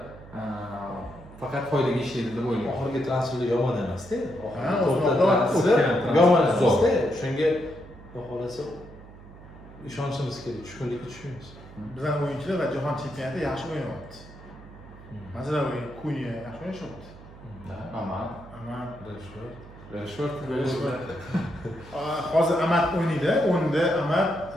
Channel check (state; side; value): noise; right; hum, 18 dB below the sound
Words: faqat foydaga ishlaydi deb o'ylayman. oxirgi transferlar yomon emas-da. O'tgan Yomon emas-da. Shunga xudo xolasa ishonchimiz kerak, tushkunlikka tushmaymiz. Bizning o'yinchilar va jahon chempionatida yaxshi o'ynayapti. Masalan, Kunya yaxshi o'ynayapti. Aman, Rashford. Hozir Amat o'ynaydi, o'nda Amat